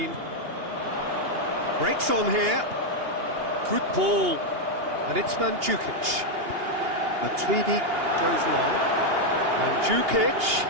Breaks on here. Good ball. And it's Mandzukic. Matuidi goes long. Mandzukic.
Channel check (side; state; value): left; late; 2.8 ms